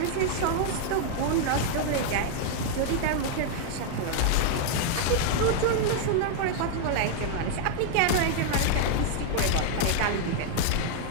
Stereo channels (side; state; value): both; different; correlation 0.00